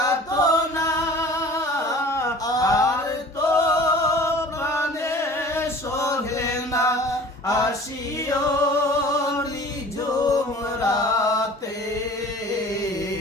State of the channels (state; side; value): normal; both; correlation 0.45